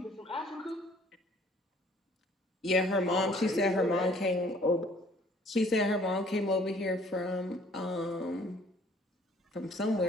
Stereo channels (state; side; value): normal; both; correlation 0.57